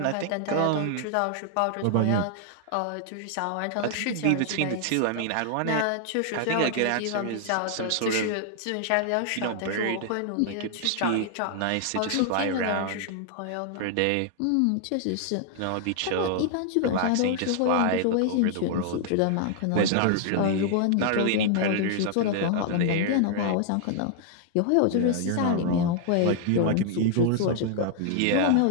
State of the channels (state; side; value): different; both; correlation 0.00